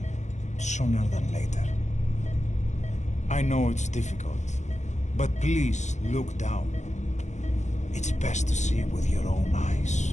sooner than later. I know it's difficult, but please look down. It's best to see with your own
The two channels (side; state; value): right; late; 0.34 ms